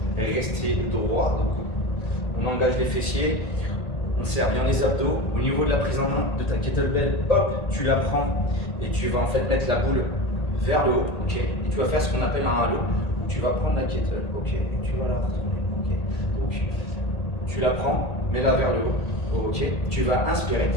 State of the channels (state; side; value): late; right; 1.9 ms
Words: rester droit. Donc on engage les fessiers. On serre bien les abdos. Au niveau de la prise en main de ta kettlebell, hop, tu la prends et tu vas en fait mettre la boule vers le haut, ok. Et tu vas faire ce qu'on appelle un halo. Tu vas prendre la kettle, ok, et tu vas la retourner, ok. Donc tu la prends, mets-la vers le haut, ok. Tu vas inspirer,